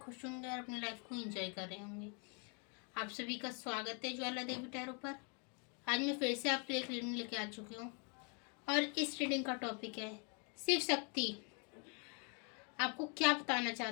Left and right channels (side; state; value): right; quieter; 36.5 dB